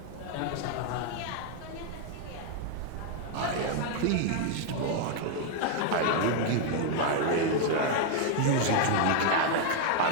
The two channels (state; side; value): different; both; correlation 0.00